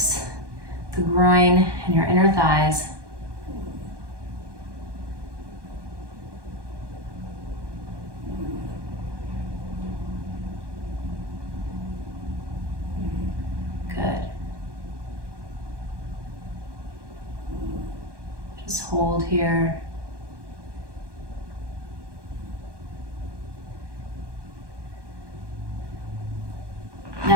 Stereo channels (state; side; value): late; left; 1.1 ms